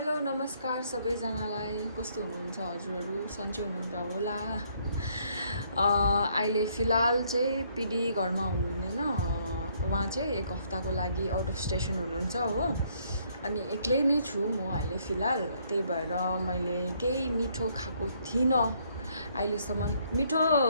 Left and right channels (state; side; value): inverted; both; correlation -0.68